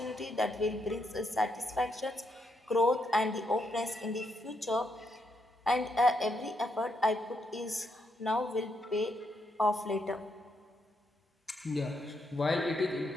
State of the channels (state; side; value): normal; both; correlation 0.79